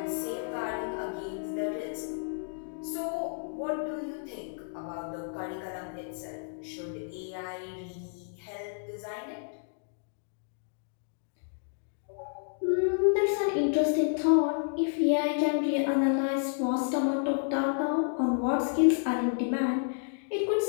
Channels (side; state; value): right; silent; digital silence